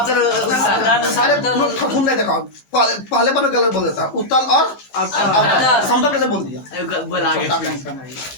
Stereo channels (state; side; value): late; right; 16 ms